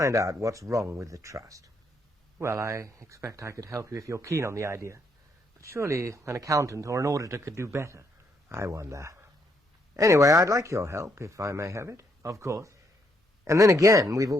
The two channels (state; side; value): normal; both; correlation 0.74